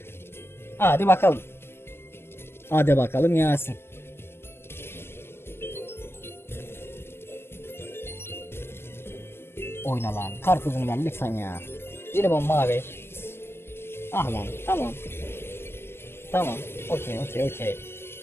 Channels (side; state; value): right; late; 0.12 ms